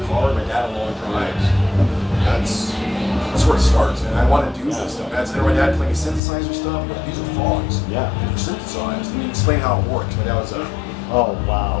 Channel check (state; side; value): drops out; right; at 6.2 s